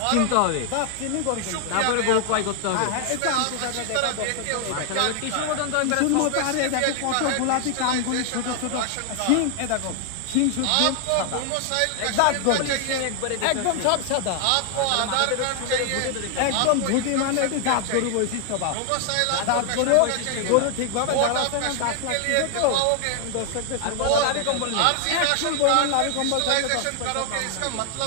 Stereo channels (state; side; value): different; both; correlation 0.00